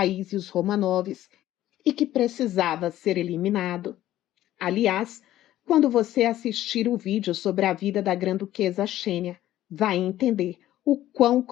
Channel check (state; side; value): quieter; right; 13.7 dB